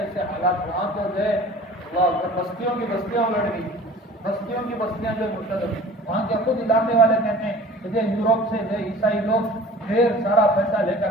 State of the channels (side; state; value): both; normal; correlation 0.44